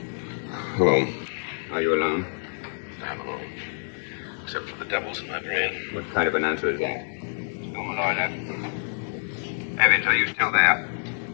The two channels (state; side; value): silent; right; 60 dB below the other